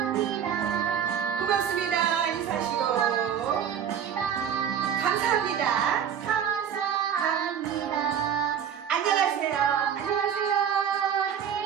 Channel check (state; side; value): quieter; left; 8.4 dB